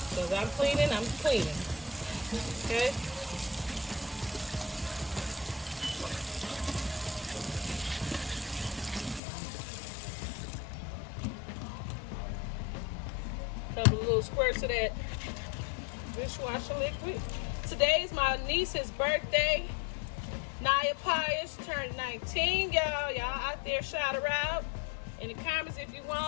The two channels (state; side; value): drops out; right; at 9.2 s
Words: So as I'm cleaning, okay? Couple of little squirts of that dishwasher liquid. Today's my niece's birthday. Naya Pius turned 19, y'all. Y'all out there shout her out in the comments if you